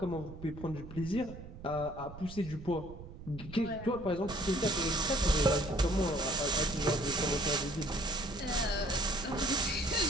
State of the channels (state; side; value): noise; right; rumble, 13 dB below the sound